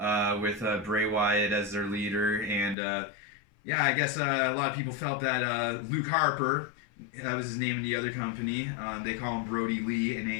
with Bray Wyatt as their leader. And yeah, I guess a lot of people felt that Luke Harper, that was his name in the other company. They call him Brodie Lee in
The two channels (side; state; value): right; drops out; at 2.8 s